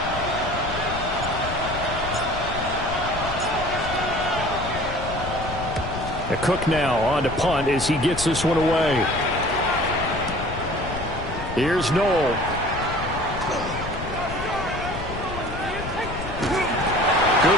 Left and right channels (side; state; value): left; noise; rumble, 8 dB below the sound